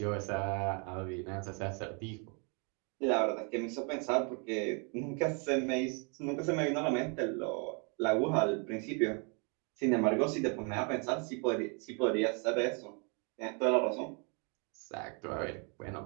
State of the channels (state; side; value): quieter; left; 36.1 dB